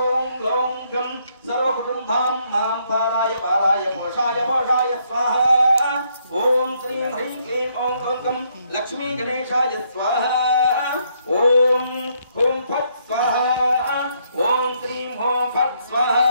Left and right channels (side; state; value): both; inverted; correlation -0.72